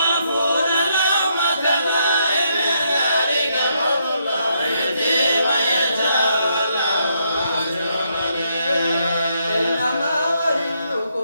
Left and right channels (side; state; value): both; inverted; correlation -0.76